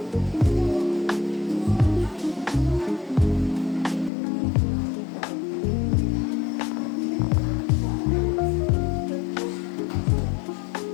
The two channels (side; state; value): right; drops out; at 4.1 s